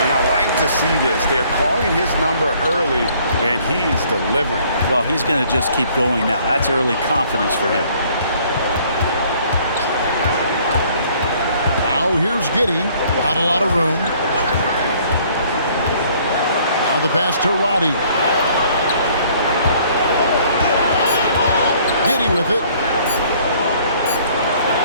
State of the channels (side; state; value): both; inverted; correlation -0.59